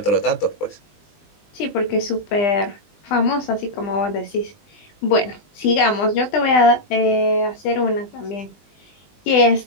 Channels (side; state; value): right; late; 20 ms